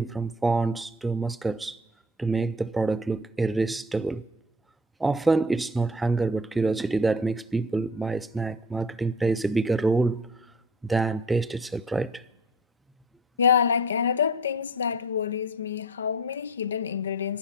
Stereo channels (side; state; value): both; normal; correlation 0.46